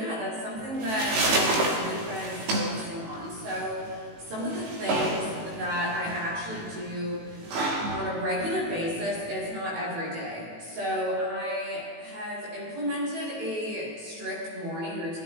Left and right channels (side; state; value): left; late; 18 ms